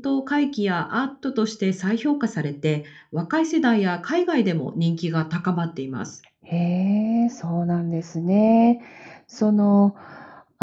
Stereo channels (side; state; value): both; identical; correlation 1.00